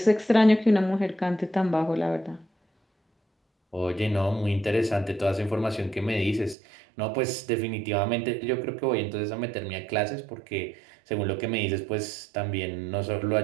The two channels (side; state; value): left; drops out; at 6.6 s